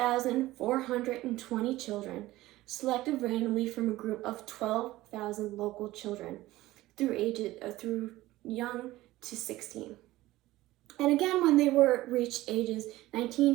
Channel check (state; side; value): quieter; left; 17.1 dB